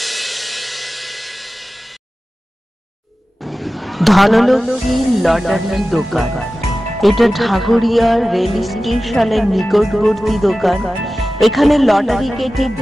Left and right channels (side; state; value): both; normal; correlation 0.95